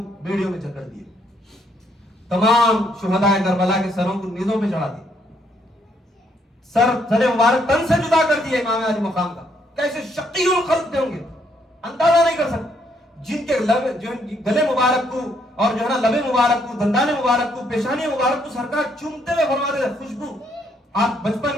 بیڑیوں میں چکر دیے, تمام شہداء کربلا کے سروں کو نیزوں پہ چڑھا دیے, سر مبارک تن سے جدا کر دیا امام علی مقام کا. کیسے شقی الخلق تھے ہوں گے, اندازہ نہیں کر سکتے. جن کے گلے مبارک کو اور جو ہے نا لبے مبارک کو, دندان مبارک کو, پیشانی مبارک کو سرکار چومتے ہوئے فرماتے تھے خوشبو. آپ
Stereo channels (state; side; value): normal; both; correlation 0.71